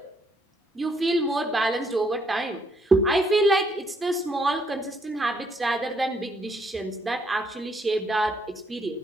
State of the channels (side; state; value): both; normal; correlation 0.71